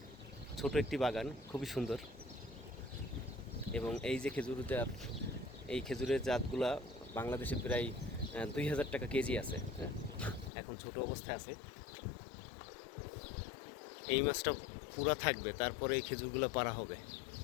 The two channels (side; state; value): right; drops out; at 10.5 s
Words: ছোট একটি বাগান, খুবই সুন্দর। এবং এই যে এই খেজুরের জাতগুলা বাংলাদেশে প্রায় 2000 টাকা কেজি আছে। হ্যাঁ, এখন ছোট অবস্থায় আছে। এই মাছটা পুরা থাকবে, তারপরে এই খেজুরগুলো পাড়া হবে।